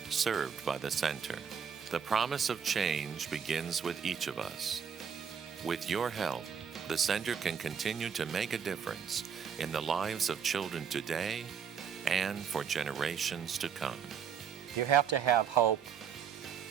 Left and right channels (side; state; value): left; quieter; 7.3 dB